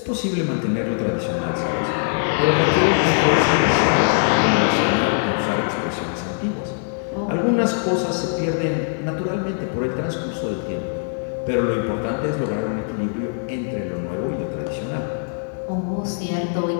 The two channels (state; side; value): silent; right; 62 dB below the other